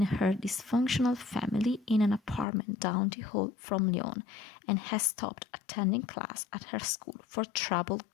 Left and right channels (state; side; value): drops out; right; at 2.5 s